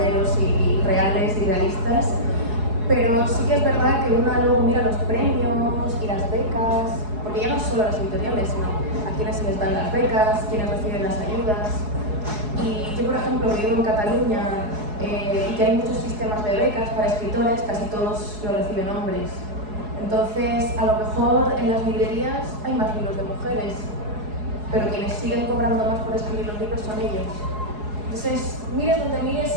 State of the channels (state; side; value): late; left; 4.7 ms